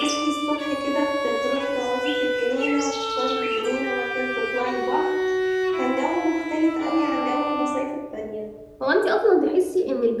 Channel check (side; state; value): both; identical; correlation 1.00